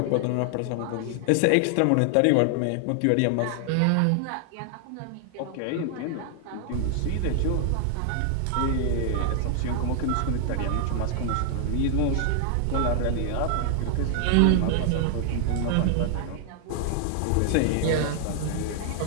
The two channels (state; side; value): different; both; correlation 0.00